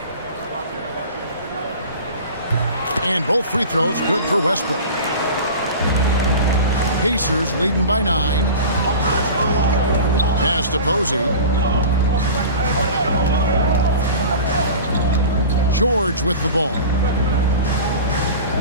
And both free throws good for Westbrook. Pacers leading by 9. Pass to Posey. George with the ball.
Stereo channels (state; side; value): inverted; both; correlation -0.36